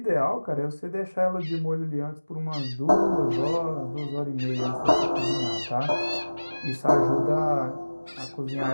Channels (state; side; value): inverted; both; correlation -1.00